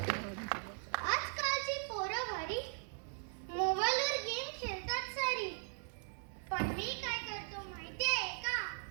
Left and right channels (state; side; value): silent; left; 52 dB below the other